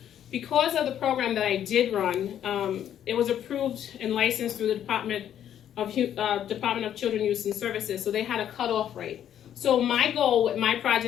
Because of the program that I did run, it was approved and licensed through the Department of Children, Youth, and Services, so they had a cutoff rate. So my goal with my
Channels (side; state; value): right; quieter; 10.2 dB